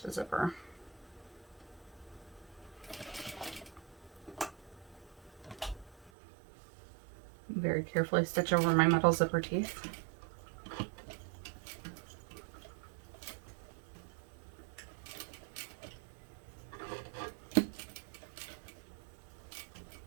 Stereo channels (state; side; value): drops out; left; at 6.1 s